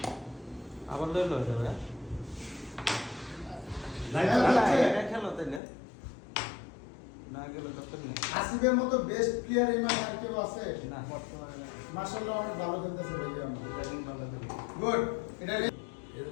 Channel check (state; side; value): drops out; right; at 5.6 s